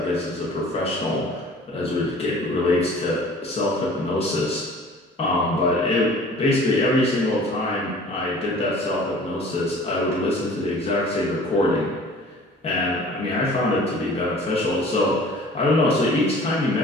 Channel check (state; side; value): normal; both; correlation 0.47